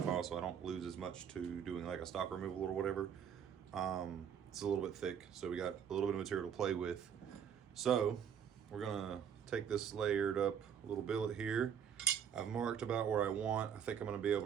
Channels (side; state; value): left; quieter; 8.2 dB